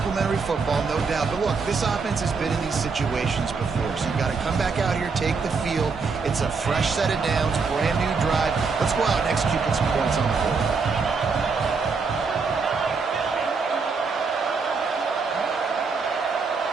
football, no doubt. But look, this offense has been in these situations before, so you got to come back out here, take the field. It's a fresh set of downs, brand new drive. Let's go out and execute with some points on the board.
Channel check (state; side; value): quieter; left; 4.8 dB